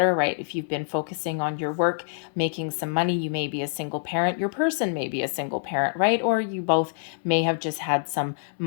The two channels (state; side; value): silent; right; 61 dB below the other